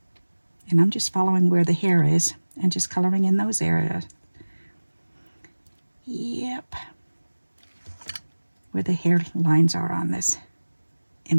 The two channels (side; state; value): both; inverted; correlation -1.00